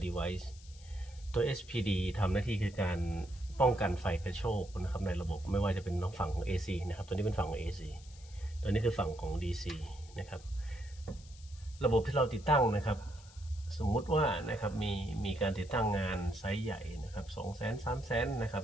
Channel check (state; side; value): noise; left; hiss, 22 dB below the sound